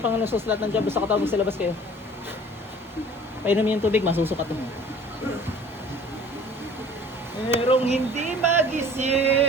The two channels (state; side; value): normal; both; correlation 0.48